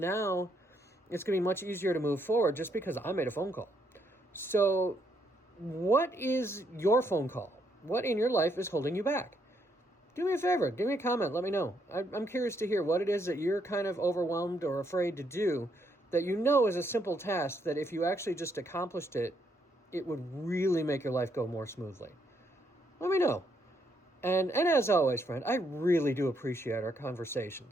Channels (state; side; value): normal; both; correlation 0.74